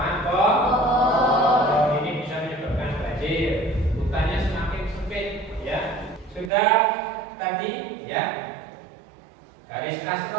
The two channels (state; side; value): drops out; left; at 6.5 s